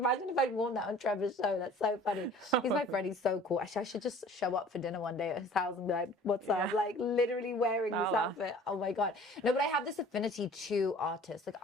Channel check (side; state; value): both; normal; correlation 0.48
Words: if I'd worn that on Trevor's show. That's so funny. He's my friend. He's so cool. Actually, I should just show up for dinner one day at his house and be like, what's up? Like literally wearing this outfit. Oh my God. No, but I have this affinity to artists. Like